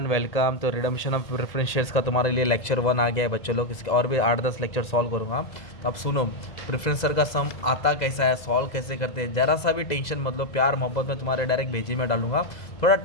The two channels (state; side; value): late; right; 2.0 ms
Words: welcome. तो redemption of preference shares का तुम्हारे लिए लेक्चर 1 आ गया है बच्चों लोग। इसके और भी 8-10 लेक्चर सॉल्व करूँगा। तो अब सुनो, प्रेफरेंस शेयर का सम आता कैसा है, सॉल्व कैसे करते हैं, ज़रा सा भी टेंशन मतलब प्यार मोहब्बत में तुम्हारे डायरेक्ट भेजी में डालूंगा। थोड़ा